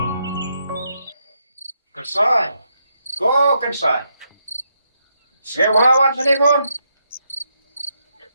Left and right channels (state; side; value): inverted; both; correlation -0.79